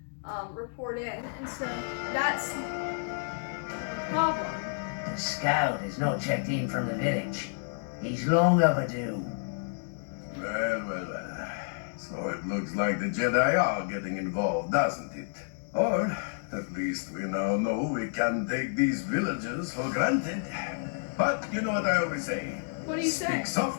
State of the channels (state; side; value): silent; right; digital silence